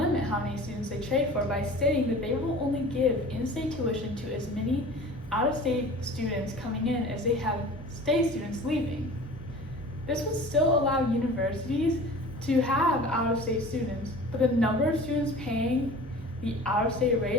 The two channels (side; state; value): both; normal; correlation 0.41